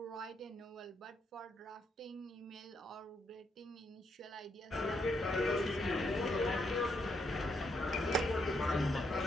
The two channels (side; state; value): both; normal; correlation 0.77